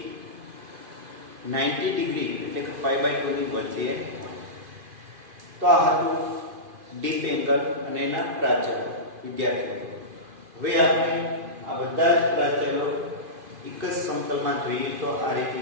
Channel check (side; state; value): left; late; 2.5 ms